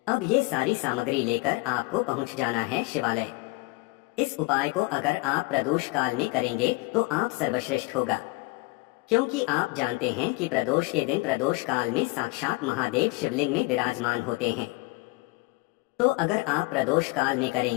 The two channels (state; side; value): quieter; right; 23.8 dB